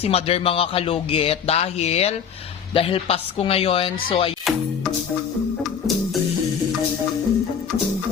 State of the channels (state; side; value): quieter; right; 7.3 dB